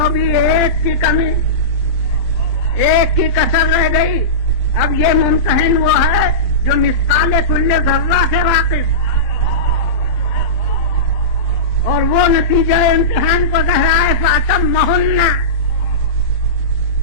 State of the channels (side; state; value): right; late; 27 ms